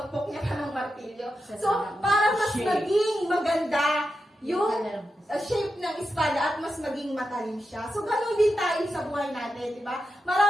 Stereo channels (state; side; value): normal; both; correlation 0.88